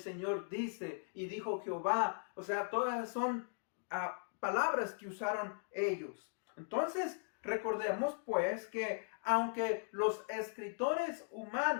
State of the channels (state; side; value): silent; right; digital silence